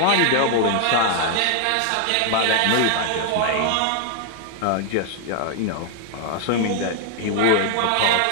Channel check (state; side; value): different; both; correlation 0.00